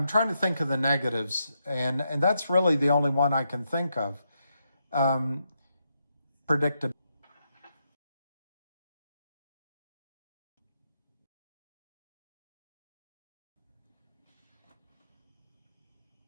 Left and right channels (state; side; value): inverted; both; correlation -0.82